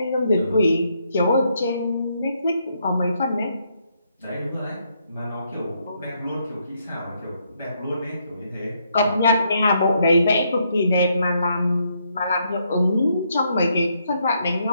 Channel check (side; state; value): both; inverted; correlation -0.75